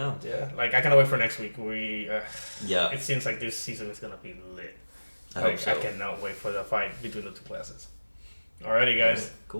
Yeah. Like I cannot wait for next week. Yeah. It seems like this season is gonna be lit. I hope so. I cannot wait for the fight between the two classes. Alrighty, guys. Right,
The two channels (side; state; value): both; inverted; correlation -1.00